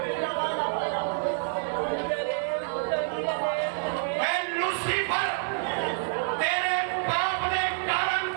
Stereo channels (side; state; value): left; silent; digital silence